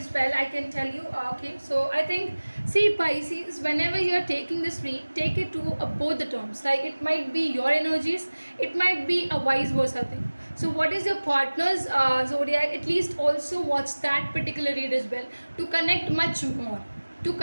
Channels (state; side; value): inverted; both; correlation -1.00